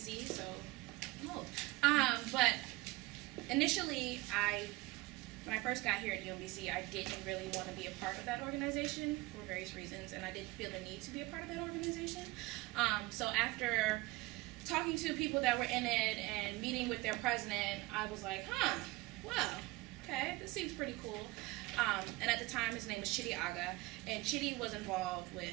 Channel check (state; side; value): quieter; left; 21.2 dB